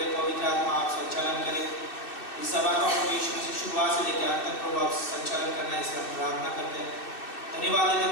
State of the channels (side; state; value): right; late; 2.6 ms